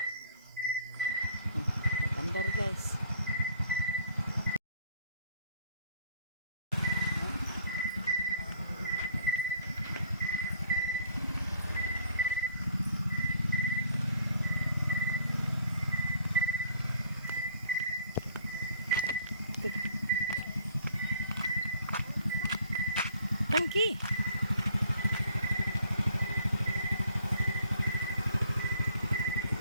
Andar guys. Tangki.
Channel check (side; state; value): both; inverted; correlation -0.58